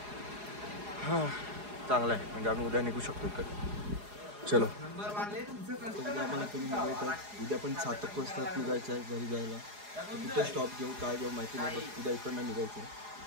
हां चांगलं आहे म्हणजे आम्ही उद्या निघू शकतो इकडे. चलो उद्या आम्हाला तुम्ही निघायचं आहे. उद्या पण 7 वाजता निघायचं आहे घरी जायला. कुठे स्टॉप घेऊ काय घेऊ माहिती नाही पण उद्या इकडनं निघायचं आहे.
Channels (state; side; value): late; left; 4.8 ms